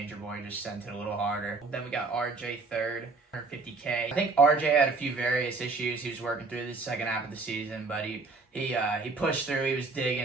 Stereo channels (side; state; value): left; quieter; 3.9 dB